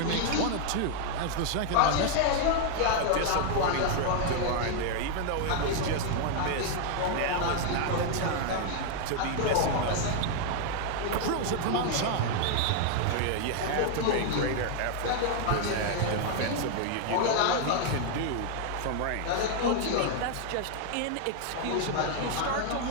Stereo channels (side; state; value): both; different; correlation 0.00